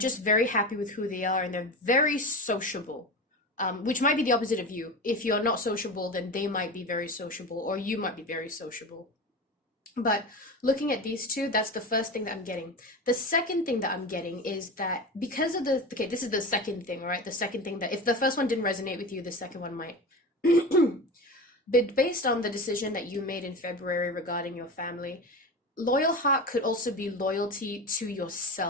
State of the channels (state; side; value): normal; both; correlation 0.27